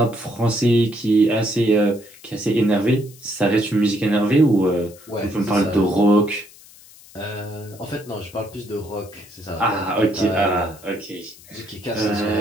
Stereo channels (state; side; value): noise; left; hiss, 22 dB below the sound